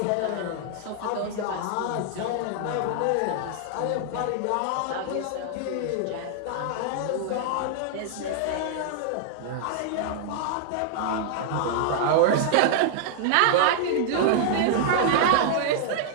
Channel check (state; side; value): different; both; correlation -0.01